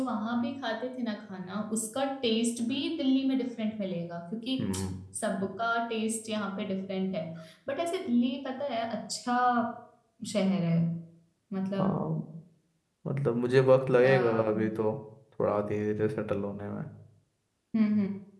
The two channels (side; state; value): both; identical; correlation 1.00